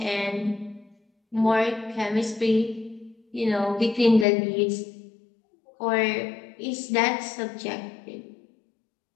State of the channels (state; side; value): drops out; right; at 4.2 s